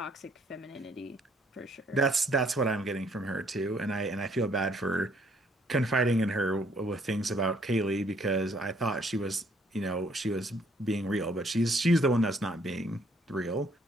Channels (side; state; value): both; normal; correlation 0.65